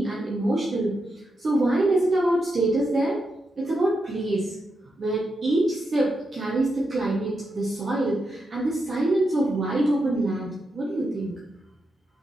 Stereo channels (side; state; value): both; normal; correlation 0.85